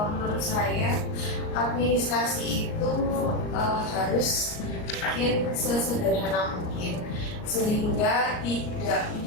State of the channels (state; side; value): late; right; 38 ms